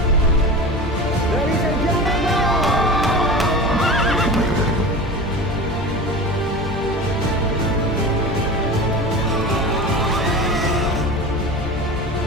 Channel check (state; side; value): normal; both; correlation 0.31